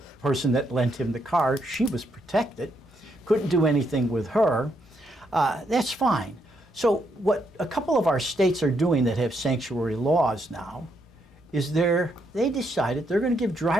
person that lent him the car. She was protected, couldn't do anything with her. That's fine. So what a couple of our states are doing that have sanctuary laws now is they decided they're going to give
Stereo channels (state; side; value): normal; both; correlation 0.77